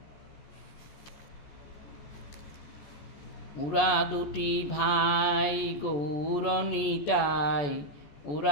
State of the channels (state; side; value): late; right; 14 ms